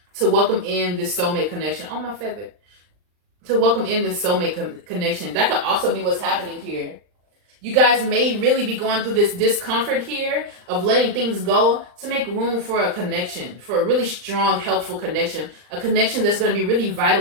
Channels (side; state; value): left; late; 39 ms